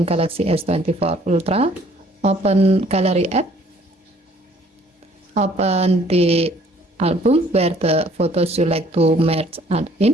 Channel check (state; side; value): normal; both; correlation 0.59